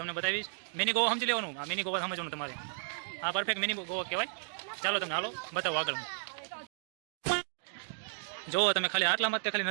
બતાવીશ. મિની ગોવા સમજી લેવાનું. આ મિની ગોવા સમજવાનું તમારે. આ પરફેક્ટ મિની ગોવા કહેવાય. ચાલો તમને હાલો બતાવો આગળ. જુઓ તમે ખાલી આટલામાં ખાલી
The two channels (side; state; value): left; silent; digital silence